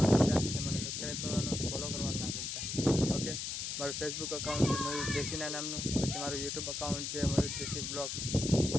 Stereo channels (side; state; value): left; noise; hiss, 4 dB below the sound